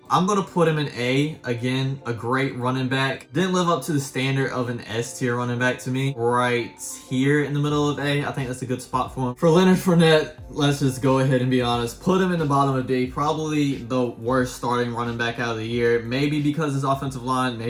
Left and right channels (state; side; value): identical; both; correlation 1.00